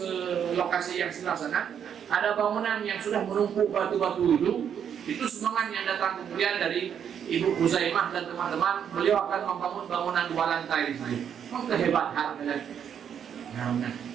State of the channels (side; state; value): left; quieter; 8.4 dB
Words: lokasi yang sebelah sana, ada bangunan yang sudah menumpuk batu-batu itu semangat yang datang kemudian dari Ibu Huzaimah dan teman-teman, beliau akan membangun bangunan 2 lantai di sini. Memang kehebatan